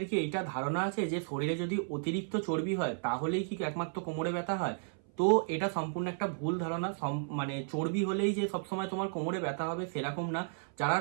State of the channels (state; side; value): silent; left; 56 dB below the other